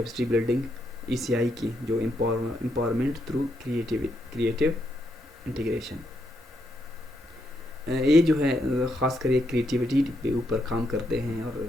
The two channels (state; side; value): normal; both; correlation 0.79